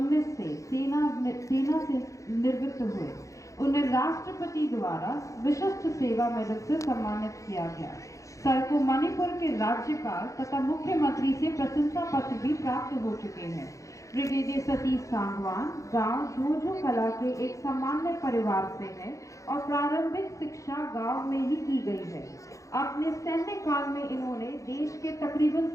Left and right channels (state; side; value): late; right; 0.15 ms